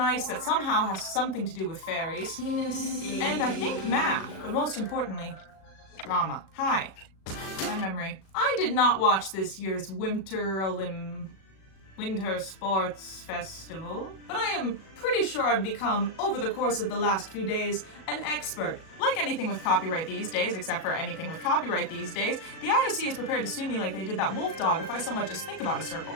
ice that somehow has something to do with fairies. And I think math, but most importantly, drama. Hi. My memory. I did not watch this year's Winter Sports Festival, but I am pretty sure I've become, over the course of the last few days, an expert. Like anything with copyright these days, except for anything with copyright these days, the IOC is prepared to sue me like they did that wolf dog if I so much as think about a circle.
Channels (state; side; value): late; right; 37 ms